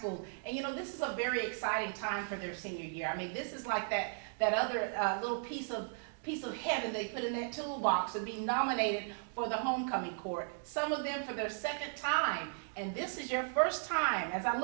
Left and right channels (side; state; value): left; silent; digital silence